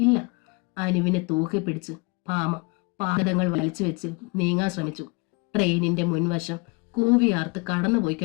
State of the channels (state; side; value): quieter; right; 27.7 dB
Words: അനുവിനെ തൂക്കി പിടിച്ച് ഭാമ പാദങ്ങൾ വലിച്ചു വെച്ച് നീങ്ങാൻ ശ്രമിച്ചു. ട്രെയിനിന്റെ മുൻവശം കൂവിയാർത്ത് കടന്നുപോയി